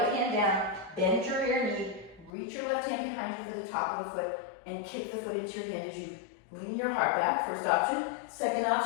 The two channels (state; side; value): drops out; right; at 2.3 s